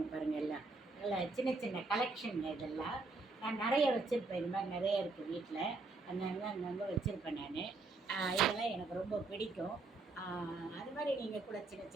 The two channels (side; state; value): left; quieter; 3.6 dB